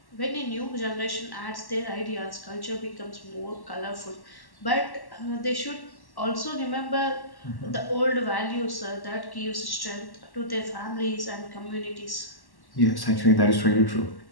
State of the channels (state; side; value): late; right; 1.1 ms